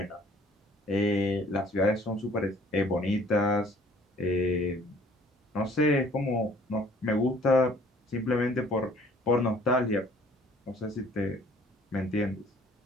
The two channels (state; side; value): normal; both; correlation 0.56